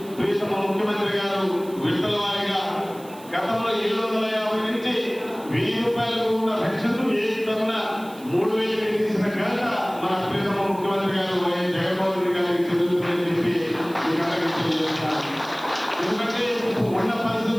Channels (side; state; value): right; noise; hiss, 21 dB below the sound